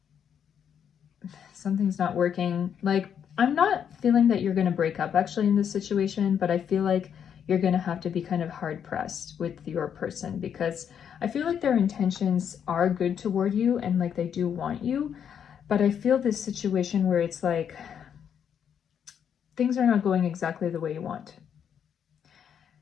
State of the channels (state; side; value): quieter; right; 8.3 dB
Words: something's not working. Like, I'm not feeling that you're going to break up actually in this situation, but I feel like you're going to have to be kind of hard pressed with your person, because I feel like their intentions are good toward you and like they do want you. But I feel this situation where it's like things are not going exactly the way you want.